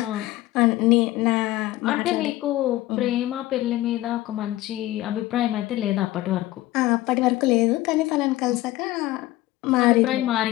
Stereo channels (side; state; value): right; quieter; 16.8 dB